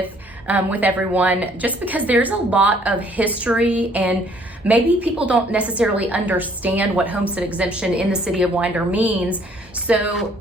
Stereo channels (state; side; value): normal; both; correlation 0.61